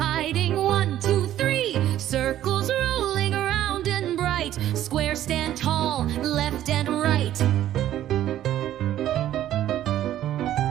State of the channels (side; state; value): left; quieter; 12.4 dB